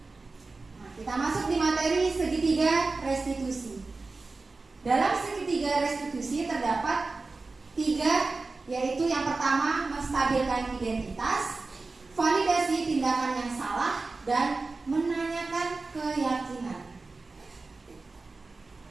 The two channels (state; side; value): quieter; left; 3.7 dB